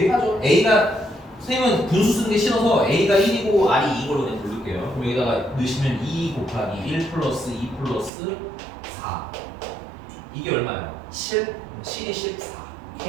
A가 선생님은 분수 쓰는 게 싫어서 A가 1이고 R이 2인 걸로 그냥 부를게요. 그럼 여기다가 넣으시면 2 곱하기 1 플러스 2 플러스 4. 이게 얼마예요? 7? 7이 14.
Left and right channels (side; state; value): left; drops out; at 8.1 s